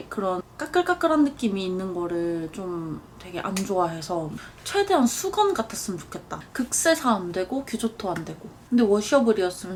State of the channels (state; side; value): identical; both; correlation 1.00